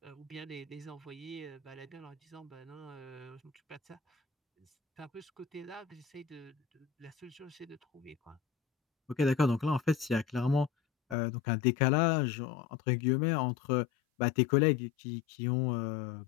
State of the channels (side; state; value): right; drops out; at 11.2 s